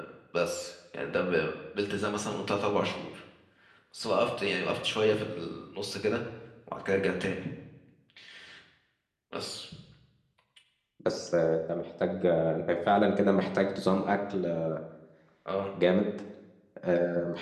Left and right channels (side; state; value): both; identical; correlation 1.00